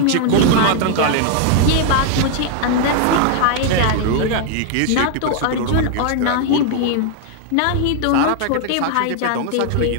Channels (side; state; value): both; different; correlation 0.00